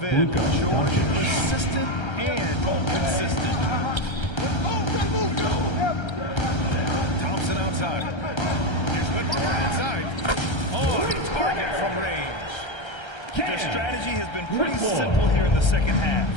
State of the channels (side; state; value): right; late; 1.3 ms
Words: end, George persistent and consistent. Thompson outside. Here's Whitmore outside. On target from range. Their strategy has been pretty simple here in the second half.